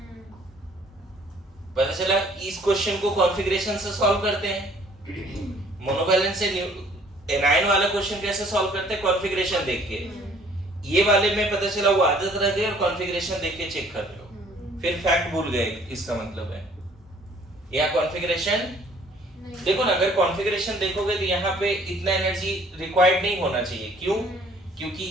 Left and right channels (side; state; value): both; normal; correlation 0.57